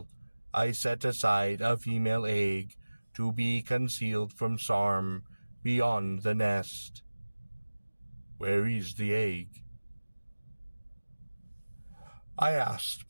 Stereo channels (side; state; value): both; inverted; correlation -1.00